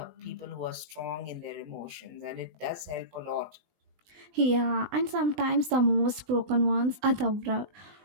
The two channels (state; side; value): late; left; 20 ms